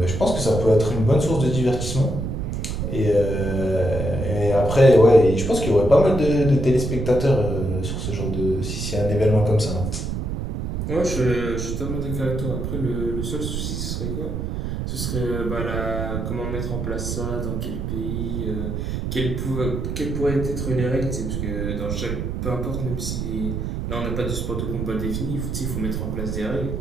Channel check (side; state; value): right; noise; rumble, 3 dB below the sound